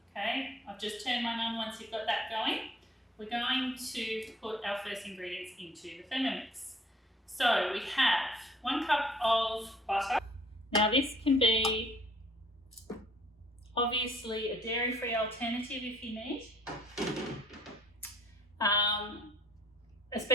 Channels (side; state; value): both; normal; correlation 0.59